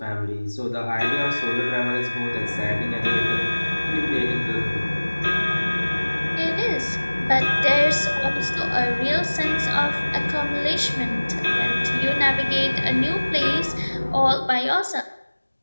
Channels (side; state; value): both; inverted; correlation -1.00